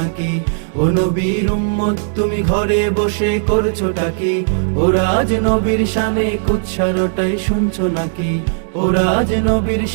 ও নবীর উম্মত তুমি ঘরে বসে করছোটা কি? ও রাজ নবীর শানে কুৎসারটাই শুনছো নাকি? ও রাজ নবীর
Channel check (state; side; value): silent; left; digital silence